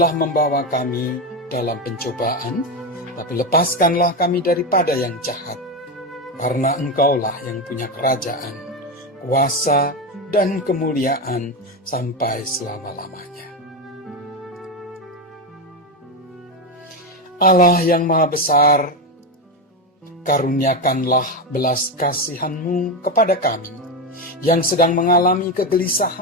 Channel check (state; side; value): normal; both; correlation 0.13